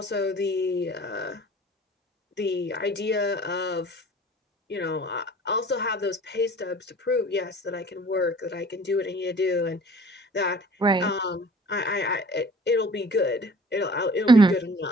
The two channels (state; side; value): normal; both; correlation 0.49